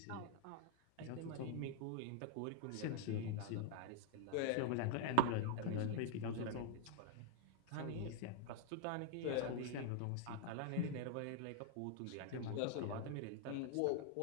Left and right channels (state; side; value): different; both; correlation 0.00